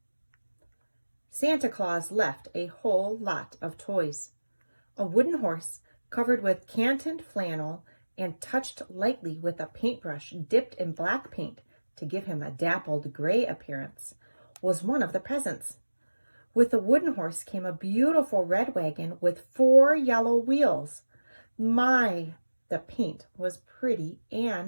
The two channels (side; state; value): both; inverted; correlation -1.00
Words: Santa Claus left a whole lot of toys. A wooden horse covered with cantoned flannel and touched lightly with a paintbrush dipped in black paint to give him a dappled gray appearance was one of the presents. With the wooden horse came a beautiful red wagon with 4 yellow wheels. My, the paint was pretty